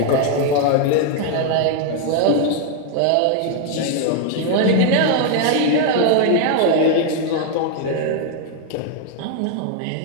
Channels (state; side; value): different; both; correlation 0.00